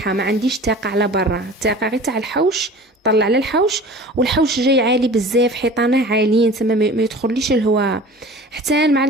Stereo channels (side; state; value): both; normal; correlation 0.41